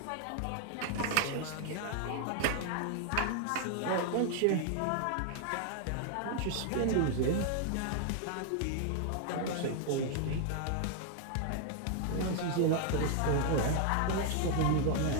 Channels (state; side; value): different; both; correlation 0.00